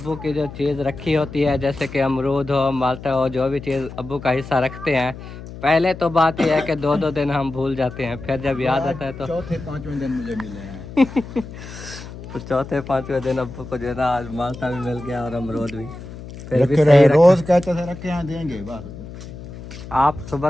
की जो चीज़ रखी होती है, जैसे कि अमरूद हो, माल्टा हो, जो भी चीज़ अब्बू का हिस्सा रखते हैं, पहले तो बात यह है कि दो दो दिन हम भूल जाते हैं, फिर जब याद आता है तो चौथे पांचवें दिन मुझे मिले हैं। तो चौथे पाँचवें दिन अब्बू को जो है ना आज माल्टा भी मिल गया और अमरूद भी। फिर भी रखे सही रहे, रखा। रोज कहते थे रखे यहाँ देंगे बस। आप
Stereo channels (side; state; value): left; noise; hum, 13 dB below the sound